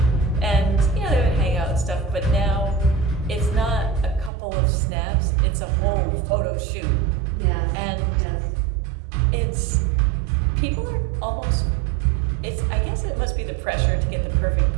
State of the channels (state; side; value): drops out; left; at 4.3 s